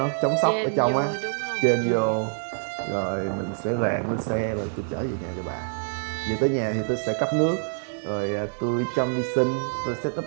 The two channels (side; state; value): left; silent; digital silence